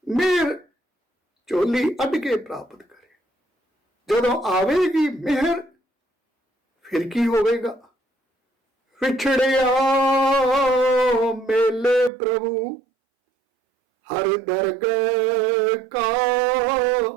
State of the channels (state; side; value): drops out; left; at 12.1 s